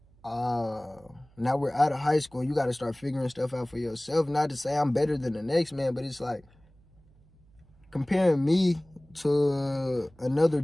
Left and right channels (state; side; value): noise; right; hum, 29 dB below the sound